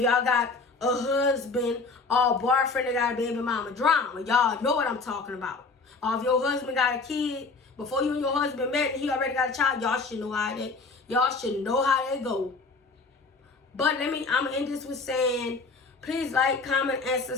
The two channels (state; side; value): quieter; right; 4.0 dB